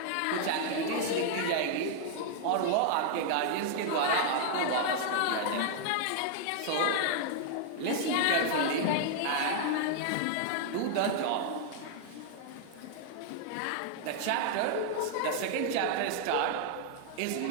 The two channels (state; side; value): different; both; correlation 0.00